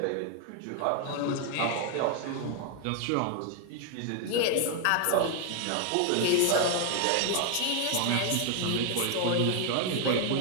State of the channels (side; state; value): both; different; correlation 0.00